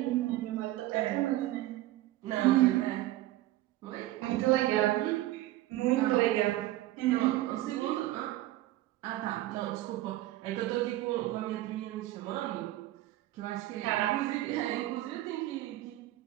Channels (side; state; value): left; quieter; 16.0 dB